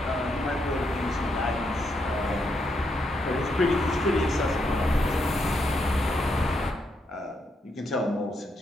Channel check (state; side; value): normal; both; correlation 0.79